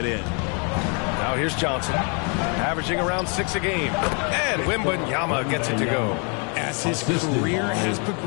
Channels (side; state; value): right; quieter; 36.7 dB